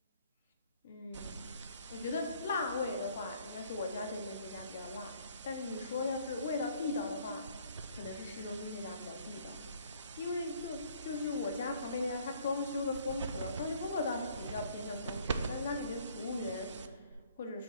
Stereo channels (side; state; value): both; inverted; correlation -0.60